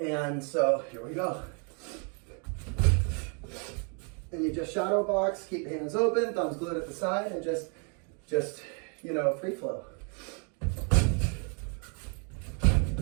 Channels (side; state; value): left; quieter; 38.3 dB